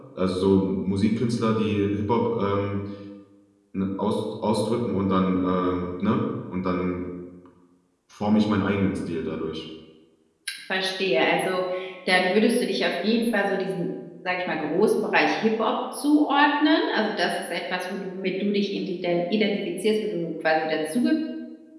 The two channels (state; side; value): identical; both; correlation 1.00